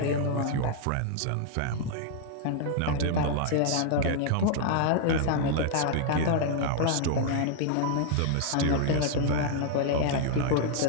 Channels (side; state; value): both; different; correlation 0.00